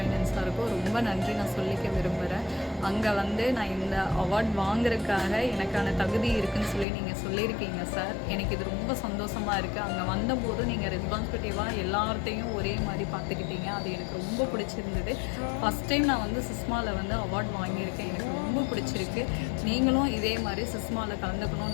சாருக்கும் ரொம்ப நன்றி நான் சொல்லிக்க விரும்புகிறேன். அங்கே நான் இந்த அவார்ட் வாங்குறதுக்காக எனக்கான தகுதி இருக்குதுன்னு சொல்லி நீங்கள் சொல்லியிருக்கீங்க சார். எனக்கு இது ரொம்ப சந்தோஷமாக இருக்குது. அங்கே வந்தபோது நீங்கள் ரெஸ்பான்சிபிலிட்டிவாக எல்லார்த்தையும் ஒரே மாதிரி பார்த்துக்கிட்டீங்க. அது எனக்கு ரொம்ப பிடிச்சிருந்தது. ஃபஸ்ட் டைம் நான் சிஸ்மாவில் அவார்ட் வாங்கியிருக்கேன். எனக்கு ரொம்ப பிடிச்சிருக்கு. நீங்களும் இதே மாதிரி சிஸ்மாவில்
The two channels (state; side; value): drops out; right; at 6.9 s